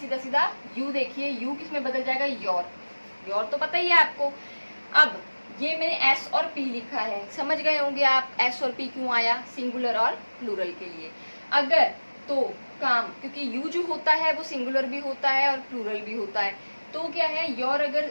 सीधा। यू देखिए, यू किस में बदल जाएगा? योर। योर तो पता ही है आपको। अब ये मैंने एस और पी लिखा है, समझ गए होंगे आप एस और पी क्यों आया, सिंगुलर और प्लूरल के लिए। अगर तो काम, क्योंकि यू जो होता है वो सिंगुलर भी होता है और प्लूरल भी होता है, तो क्या है योर अगर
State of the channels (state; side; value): inverted; both; correlation -1.00